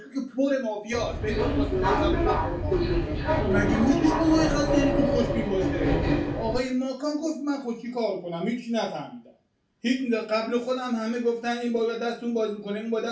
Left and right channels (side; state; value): both; identical; correlation 1.00